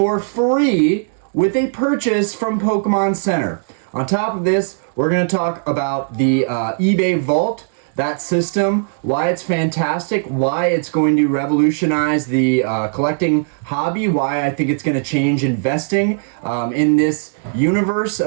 free with a purchase from Pokémon Center. On top of this, we're going to talk about the eBay Vault, that system, why it's fantastic, why it's going to revolutionize the collecting hobby, why I think it's going to change investing in this universe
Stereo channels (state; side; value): silent; left; 66 dB below the other